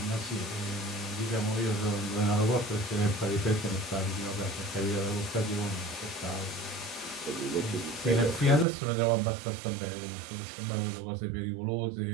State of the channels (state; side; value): drops out; left; at 8.7 s